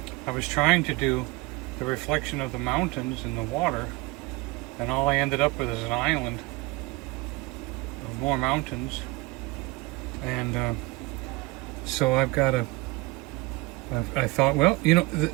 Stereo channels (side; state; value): left; quieter; 22.6 dB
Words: I was trying to do the reflection of the mountains in the water, and all I ended up with is an island of more mountains. And so I've got to. I thought, well, you know,